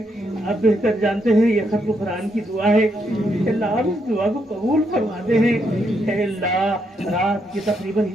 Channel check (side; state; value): both; normal; correlation 0.78